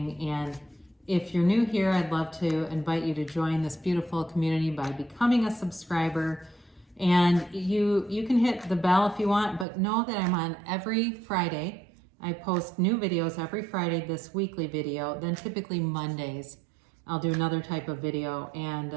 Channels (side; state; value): left; drops out; at 9.7 s